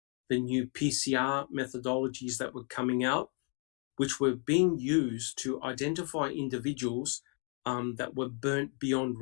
the new PCR methodologies that were coming out, which were being used to identify individuals that were burnt beyond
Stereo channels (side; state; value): right; quieter; 39.0 dB